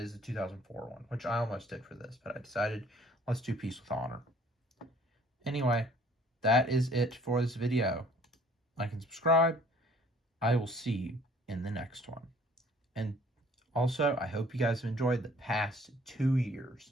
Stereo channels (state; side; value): normal; both; correlation 0.56